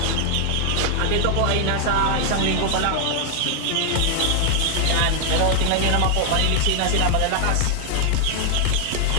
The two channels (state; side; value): different; both; correlation 0.00